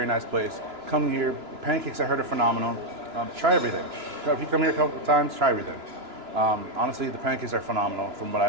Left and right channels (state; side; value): late; left; 2.9 ms